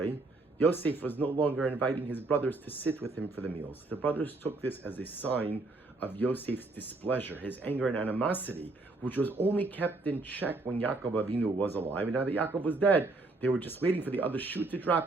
Yosef was no longer inviting his brothers to sit with him for the meals. The brothers took this as a sign of Yosef's displeasure, his anger and animosity, which was only kept in check when Yaakov Avinu was alive. And now that Yaakov was dead, they were just waiting for the other shoe to drop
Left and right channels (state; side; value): quieter; left; 3.3 dB